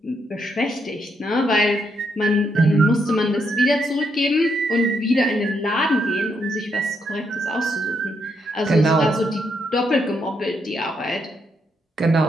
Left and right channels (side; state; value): both; normal; correlation 0.77